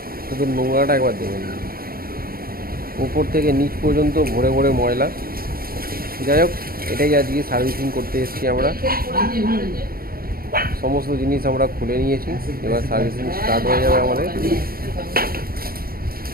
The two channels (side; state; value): left; late; 0.43 ms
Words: শুধু নোংরাটা একবার দেখে নিন, উপর থেকে নিচ পর্যন্ত ভরে ভরে ময়লা। যাই হোক, এটাই আজকে সার্ভিসিং করতে এসেছি আমরা। সমস্ত জিনিস আমরা খুলে নিয়েছি, এবার সার্ভিসিং স্টার্ট হয়ে যাবে আমাদের।